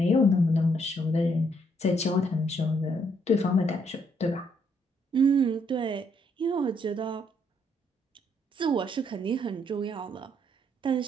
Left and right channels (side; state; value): both; normal; correlation 0.72